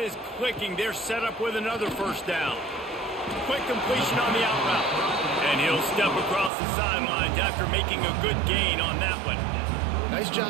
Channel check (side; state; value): left; drops out; at 6.5 s